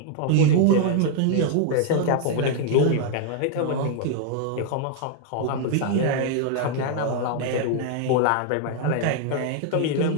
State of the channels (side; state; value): both; different; correlation 0.00